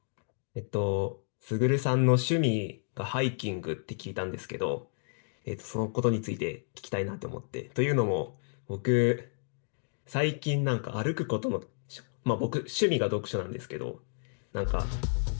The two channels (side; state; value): right; silent; digital silence